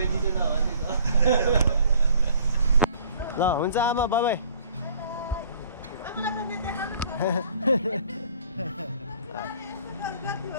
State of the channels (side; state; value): both; inverted; correlation -0.55